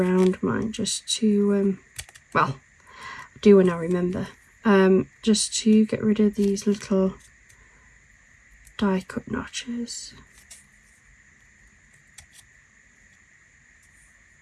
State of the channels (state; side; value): identical; both; correlation 1.00